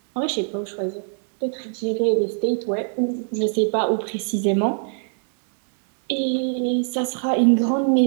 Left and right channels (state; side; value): silent; left; digital silence